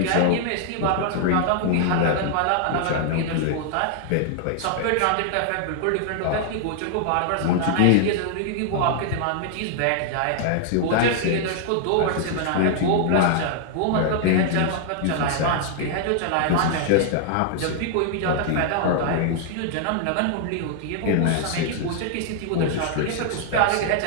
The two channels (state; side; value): different; both; correlation 0.00